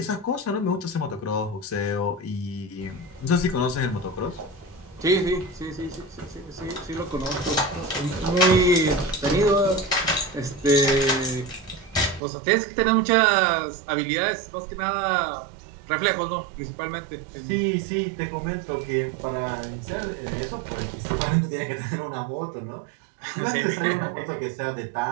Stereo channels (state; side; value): drops out; left; at 12.2 s